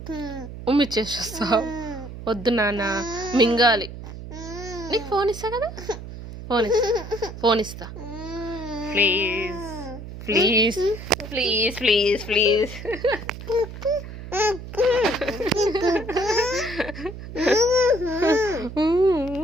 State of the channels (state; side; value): noise; right; hum, 11 dB below the sound